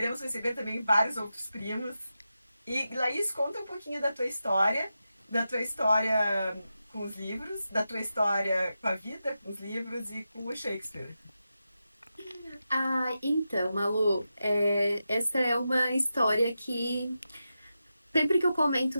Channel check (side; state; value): both; inverted; correlation -0.90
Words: receber também vários outros primos. E, Laís, conta um pouquinho da tua história com os livros, da tua história com a vida, com os livros e com o Shakespeare. Então, Malu, essa é uma história que sempre que eu